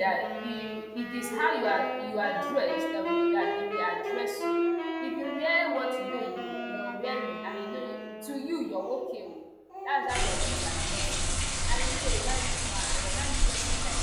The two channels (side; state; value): both; identical; correlation 1.00